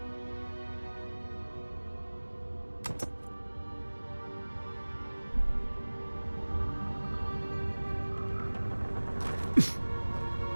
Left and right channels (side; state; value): both; inverted; correlation -1.00